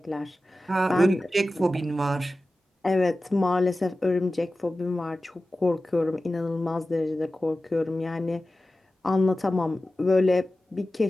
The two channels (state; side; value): normal; both; correlation 0.95